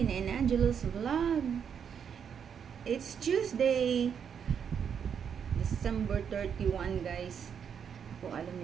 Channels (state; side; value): quieter; left; 7.5 dB